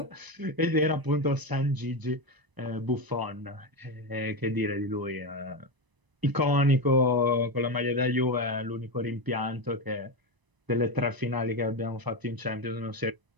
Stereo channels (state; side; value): late; left; 1.0 ms